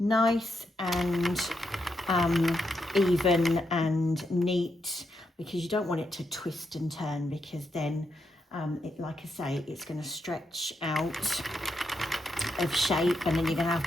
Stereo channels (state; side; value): normal; both; correlation 0.82